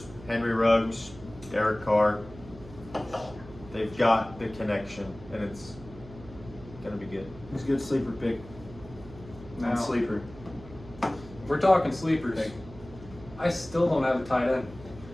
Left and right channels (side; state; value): right; noise; hum, 17 dB below the sound